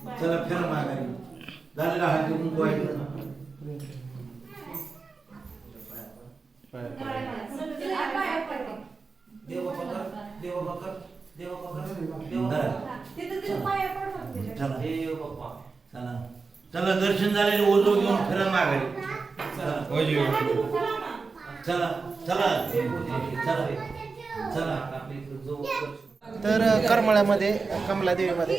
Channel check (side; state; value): left; quieter; 4.4 dB